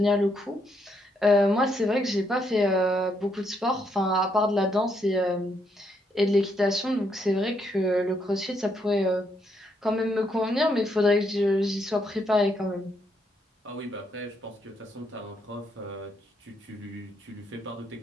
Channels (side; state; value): both; normal; correlation 0.75